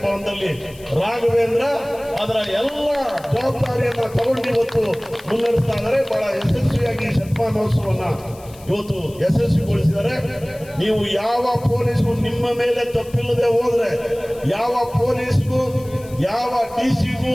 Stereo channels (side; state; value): left; noise; hiss, 22 dB below the sound